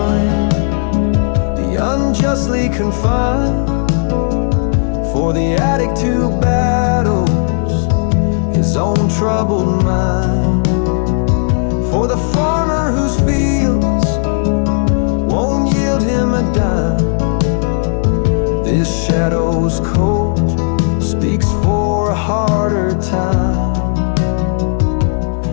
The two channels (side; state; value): right; silent; digital silence